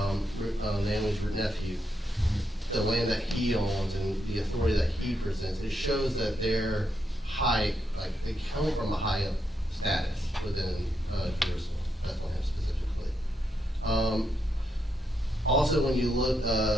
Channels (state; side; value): normal; both; correlation 0.81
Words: Naomi's nephew. The land that he owns and the authority that he presents, it shows that they're high, like they come from a high status within Jerusalem, Bethlehem specifically. Also, when you look,